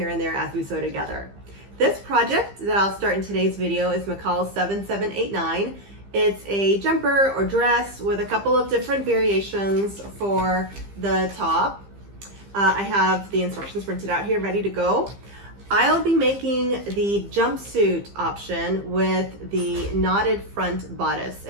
and there as we sew together. This project that I'll start in today's video is McCalls 7789. It's a jumper or dress with a couple of different variations for the top. I have the instructions printed out here ready to go. I'll be making the jumpsuit option with the knotted front bodice.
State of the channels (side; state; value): left; late; 15 ms